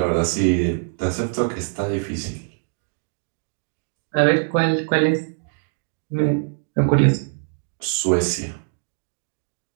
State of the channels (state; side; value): silent; left; digital silence